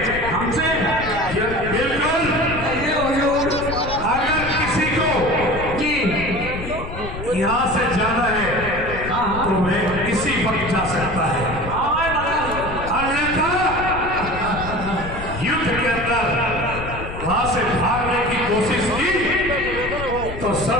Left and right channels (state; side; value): noise; left; rumble, 9 dB below the sound